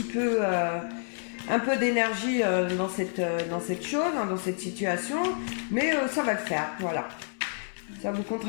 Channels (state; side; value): silent; right; digital silence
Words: peu d'énergie dans cette chose, dans cette situation, mais ça va le faire, voilà. Ça vous